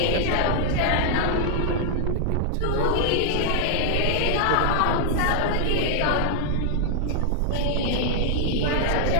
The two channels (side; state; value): both; different; correlation -0.01